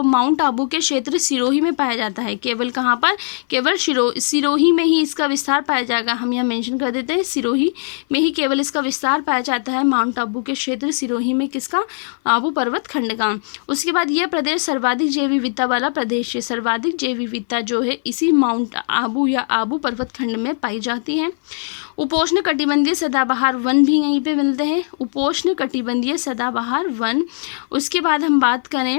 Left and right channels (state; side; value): silent; right; 60 dB below the other